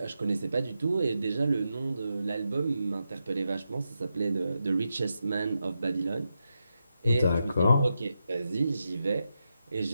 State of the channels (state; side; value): inverted; both; correlation -0.87